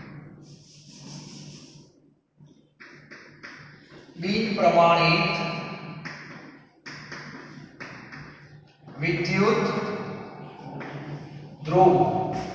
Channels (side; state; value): both; identical; correlation 1.00